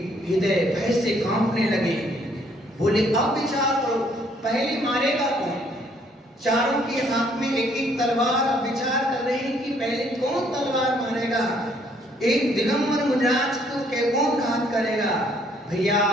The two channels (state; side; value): normal; both; correlation 0.65